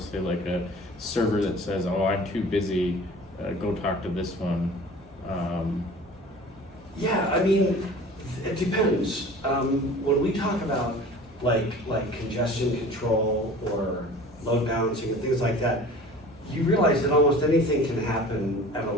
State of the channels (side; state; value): both; normal; correlation 0.43